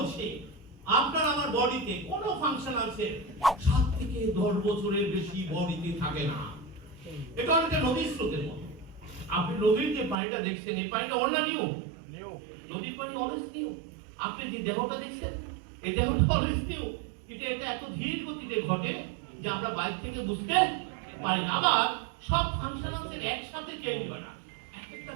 আপনার আমার বডিতে কোনো ফাংশনাল সেল 7 থেকে 10 বছরের বেশি বডিতে থাকে না। এটা একটা নদীর স্রোতের মতো। আপনি নদীর যে পানিটা দেখছেন, এই পানিটা অন্য নিউ। নদীর পানি অলওয়েজ নিউ। আপনি যে দেহটা দেখছেন, এই দেহটা অলওয়েজ নিউ। এটা এত ধীর গতিতে ঘটে যে আমরা বাইরে থেকে বুঝতে পারি না। আবার সব ফাংশনাল সেল একসাথে চেঞ্জ হয় না, এক একটা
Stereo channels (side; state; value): left; drops out; at 10.2 s